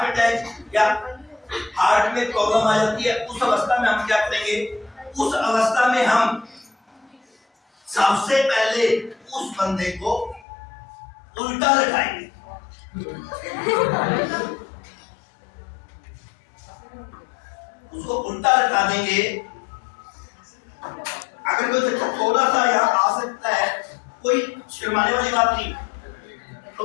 अटैक या हार्ट में प्रॉब्लम आ जाती है, उस अवस्था में हम क्या करेंगे? उस अवस्था में हम सबसे पहले उस बंदे को उल्टा लटाएंगे। उसको उल्टा लटा देंगे। अगर कोई बच्चा थोड़ा सा यहाँ आ सकता है, कोई शर्माने वाली बात नहीं, तो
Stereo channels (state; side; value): drops out; right; at 10.4 s